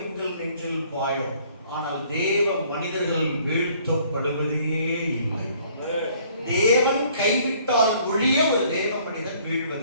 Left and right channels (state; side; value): inverted; both; correlation -0.59